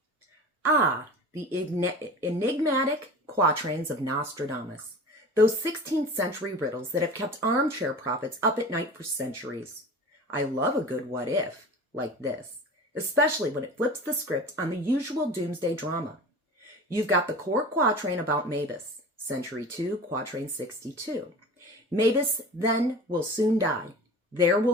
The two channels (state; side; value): normal; both; correlation 0.36